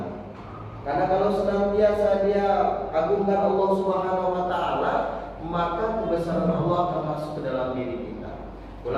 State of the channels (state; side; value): identical; both; correlation 1.00